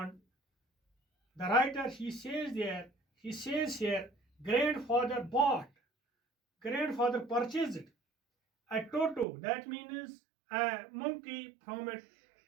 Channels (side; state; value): left; drops out; at 9.2 s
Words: the writer he says here grandfather bought, grandfather purchased a Toto, that means a monkey, from a